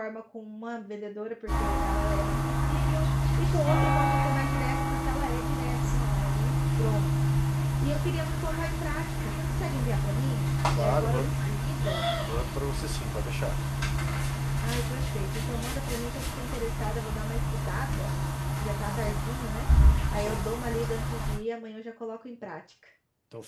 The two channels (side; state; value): both; identical; correlation 1.00